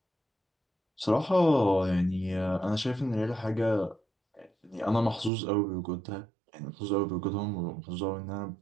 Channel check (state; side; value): drops out; left; at 5.3 s